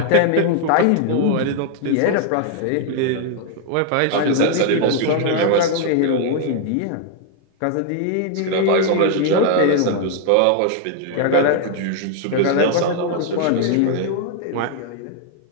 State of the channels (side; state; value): both; different; correlation 0.00